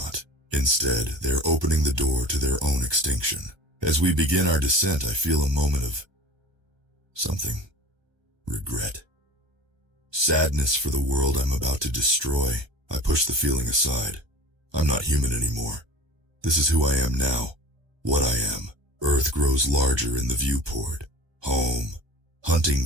Instead, they're opening the door to their own extinction. As we begin our descent, I feel a moment of something. Regret. Sadness for the world I'm about to destroy. I push the feeling aside. I'm not human anymore. This is who I am now. What I am. Earth grows larger in the viewport. Home. Hunting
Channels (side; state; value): left; late; 1.3 ms